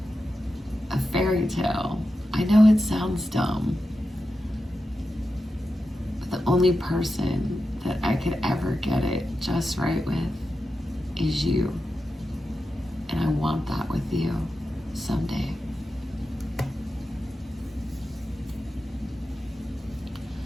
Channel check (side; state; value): both; normal; correlation 0.90